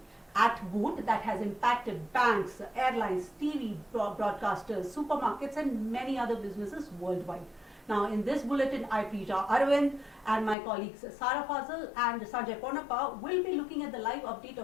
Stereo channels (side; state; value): right; drops out; at 10.6 s